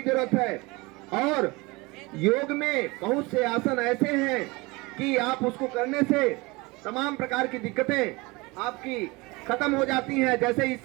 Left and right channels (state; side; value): quieter; left; 24.4 dB